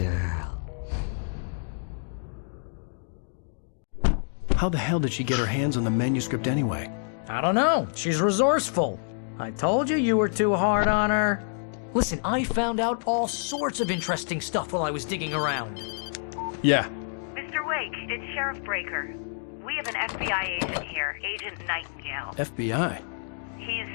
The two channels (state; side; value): silent; right; digital silence